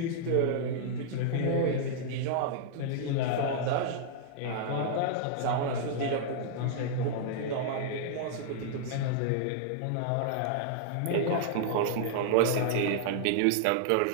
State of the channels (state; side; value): different; both; correlation -0.01